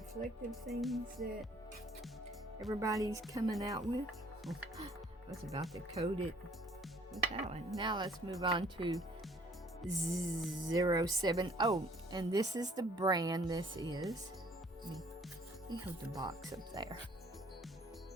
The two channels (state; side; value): normal; both; correlation 0.59